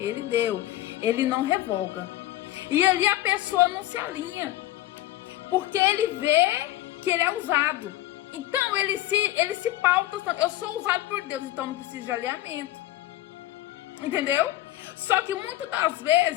deu. Ele não revoga. E ali a pessoa não se alinha. Porque ele vê que ele é usado. Então ele se pauta. Eu sou usado por Deus, então não preciso de alinhamento. Entendeu? Só que muitas das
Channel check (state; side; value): quieter; right; 15.1 dB